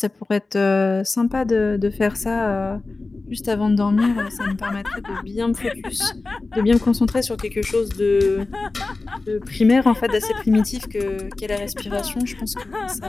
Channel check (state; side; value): quieter; right; 3.5 dB